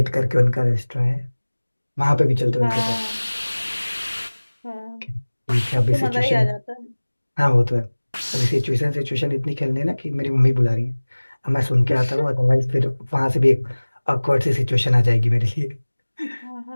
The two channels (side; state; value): both; inverted; correlation -1.00